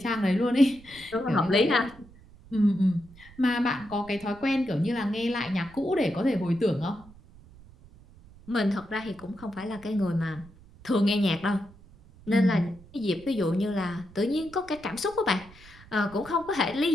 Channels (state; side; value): noise; right; rumble, 22 dB below the sound